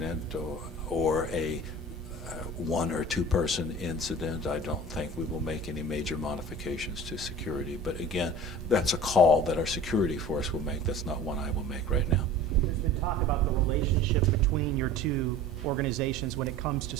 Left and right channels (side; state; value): both; normal; correlation 0.40